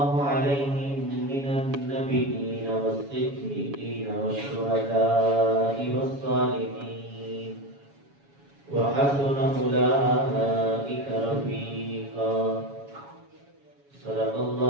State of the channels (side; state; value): left; late; 7.2 ms